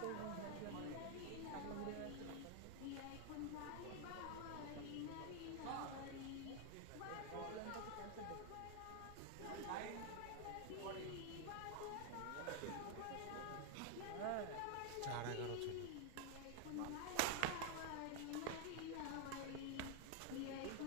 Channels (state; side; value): different; both; correlation 0.00